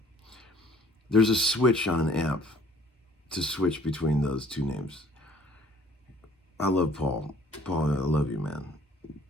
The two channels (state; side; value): normal; both; correlation 0.56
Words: There's a switch on an amp to switch between those two names. I love Paul. Paul, I love you, man.